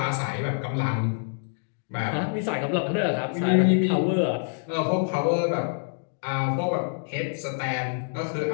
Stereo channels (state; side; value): silent; right; digital silence